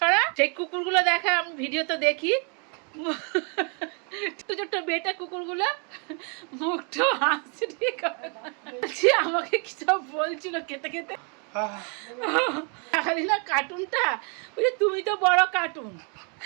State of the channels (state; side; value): quieter; left; 37.0 dB